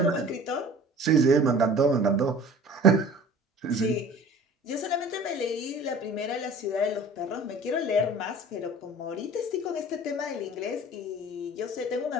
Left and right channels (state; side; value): normal; both; correlation 0.44